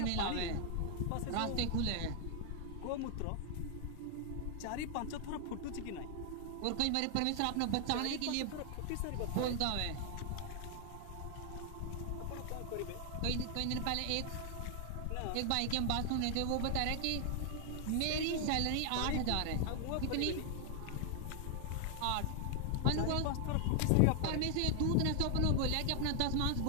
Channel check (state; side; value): different; both; correlation 0.00